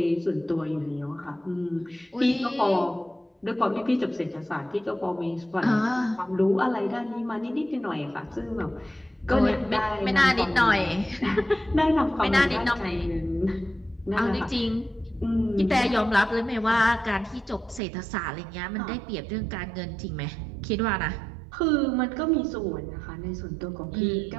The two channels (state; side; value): drops out; left; at 17.8 s